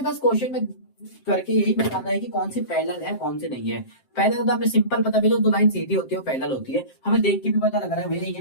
बस क्वेश्चन में करके यही बताना है कि कौन सी पैरेलल है कौन सी नहीं है। पैरेलल तो हमें सिंपल पता भी, दो लाइन सीधी होती है वो पैरेलल होती है, हमें देख के भी पता लग रहा है भैया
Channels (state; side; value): late; right; 7.6 ms